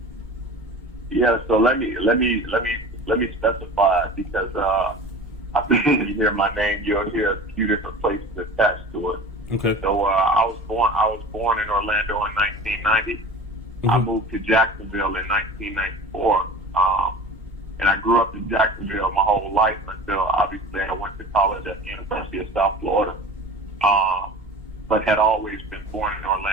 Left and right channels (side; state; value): both; normal; correlation 0.38